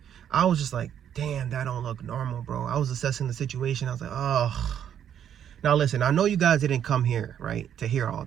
I was just like, damn, that don't look normal, bro. I was assessing the situation. I was like, oh. Now, listen, I know you guys didn't come here, right, to hear all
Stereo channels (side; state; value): left; quieter; 9.4 dB